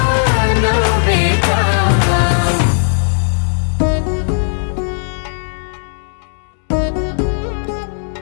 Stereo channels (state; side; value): silent; right; digital silence